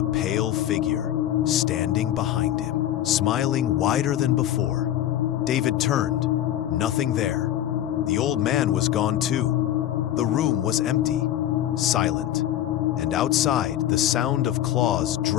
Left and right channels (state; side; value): quieter; right; 12.0 dB